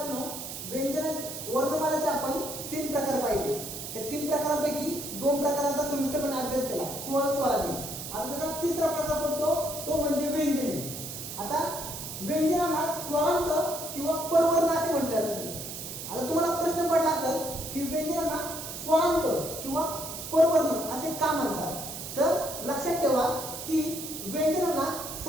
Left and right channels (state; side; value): noise; right; hiss, 8 dB below the sound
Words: व्यंजन वर्णमालेचे आपण 3 प्रकार पाहिले. त्या 3 प्रकारांपैकी 2 प्रकारांचा सविस्तरपणे अभ्यास केला, स्वर स्वरादी. आता त्याचा तिसरा प्रकार पडतो तो म्हणजे व्यंजने. आता व्यंजनांना स्वरांत किंवा परवर्ण असे म्हटले जाते. आता तुम्हाला प्रश्न पडला असेल की व्यंजनांना स्वरांत किंवा परवर्ण असे का म्हणतात, तर लक्षात ठेवा की व्यंजनांना